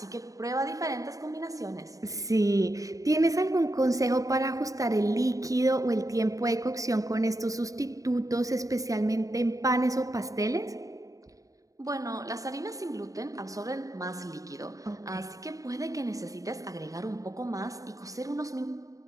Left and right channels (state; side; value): late; left; 0.16 ms